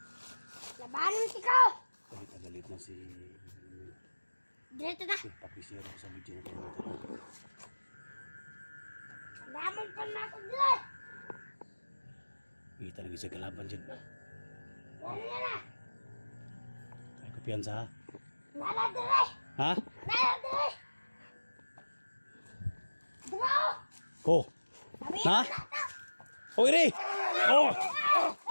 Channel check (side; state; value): both; inverted; correlation -1.00